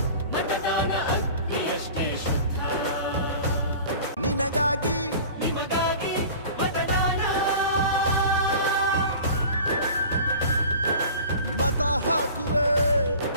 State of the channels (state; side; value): inverted; both; correlation -0.40